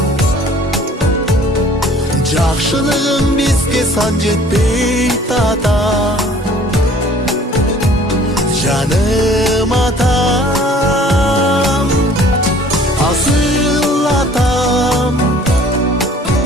Жақшылығың бізге сан жетпей тата. Жаным атам, асыл атам,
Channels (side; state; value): both; normal; correlation 0.52